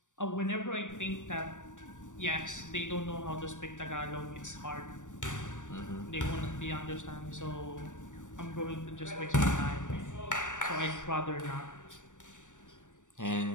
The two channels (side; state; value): right; late; 0.86 ms